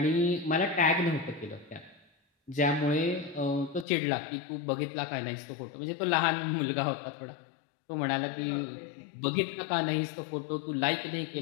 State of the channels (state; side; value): drops out; right; at 3.9 s